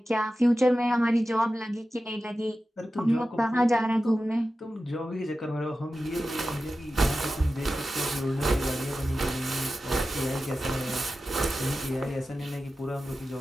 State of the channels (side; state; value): both; normal; correlation 0.93